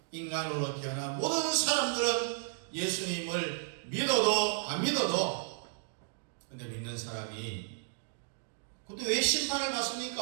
인간으로 태어난 모든 사람들은 예수님을 믿어도 안 믿어도, 근데 믿는 사람이 근데 왜 심판을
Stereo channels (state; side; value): silent; left; digital silence